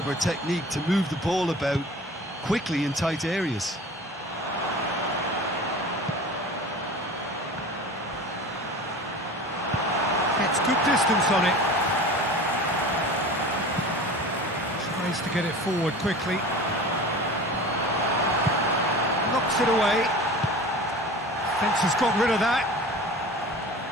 technique to move the ball about quickly in tight areas. Good distance on it. Tries to get it forward quickly. Knocks it away. Fence has got rid of that.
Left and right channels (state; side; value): normal; both; correlation 0.37